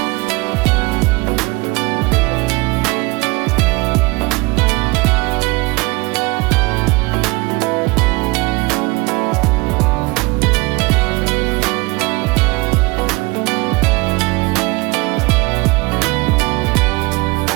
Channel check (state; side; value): quieter; left; 24.5 dB